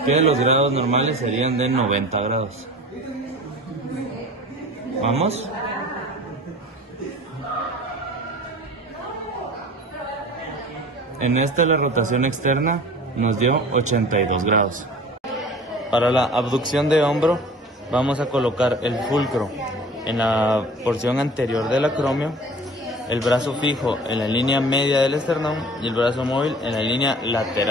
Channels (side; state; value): both; normal; correlation 0.42